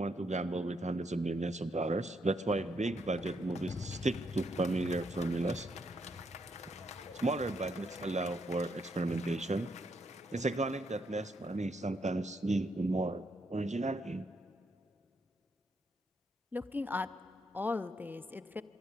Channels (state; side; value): normal; both; correlation 0.76